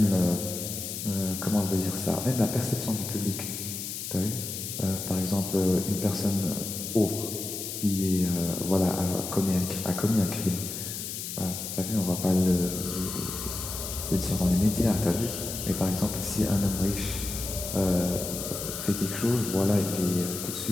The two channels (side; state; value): left; noise; hiss, 6 dB below the sound